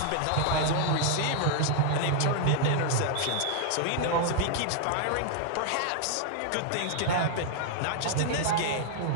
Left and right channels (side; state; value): both; different; correlation -0.01